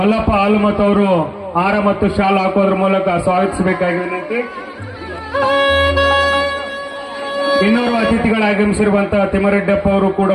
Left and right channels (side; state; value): both; identical; correlation 1.00